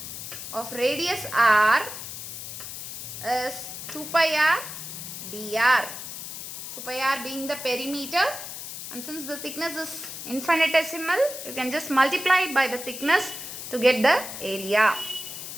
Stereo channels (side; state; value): left; noise; hiss, 9 dB below the sound